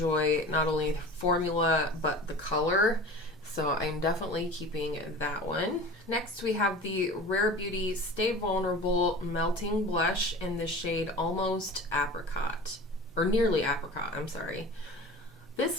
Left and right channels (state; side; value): normal; both; correlation 0.37